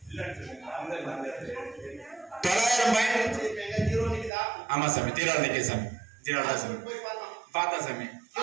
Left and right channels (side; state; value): left; drops out; at 4.3 s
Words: ஆமா சாமி, ஜீரோ நிக்க சாமி, ஜீரோ தான் சாமி. பார்த்தா சாமி,